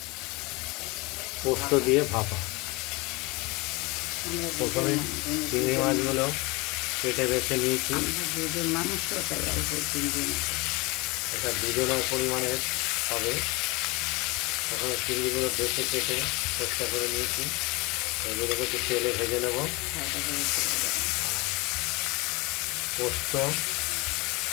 পোস্ত দিয়ে ভাপা। প্রথমে চিংড়ি মাছগুলো কেটে বেছে নিয়েছি। এটা দুজনের পরিমাণের হবে। প্রথমে চিংড়িগুলো বেছে কেটে চেষ্টা করে নিয়েছি। এগুলোকে একটু তেলে ভেজে নেব। পোস্ত,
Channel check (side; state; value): right; quieter; 25.4 dB